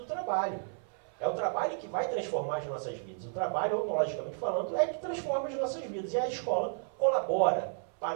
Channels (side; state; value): left; silent; 56 dB below the other